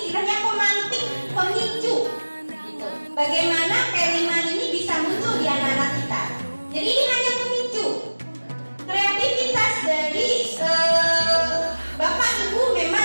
pemantik, pemicu gitu. Bagaimana P5 ini bisa muncul di anak-anak kita. Jadi ini hanya pemicu. Kreativitas dari Bapak Ibu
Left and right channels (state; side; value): inverted; both; correlation -1.00